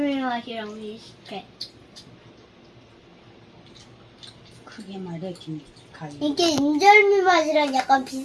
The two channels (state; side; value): identical; both; correlation 1.00